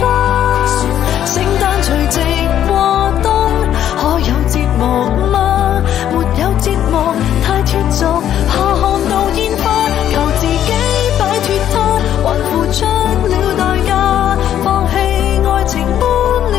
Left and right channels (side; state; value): right; quieter; 10.7 dB